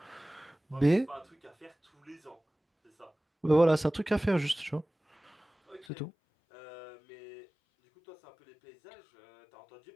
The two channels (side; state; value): right; drops out; at 5.9 s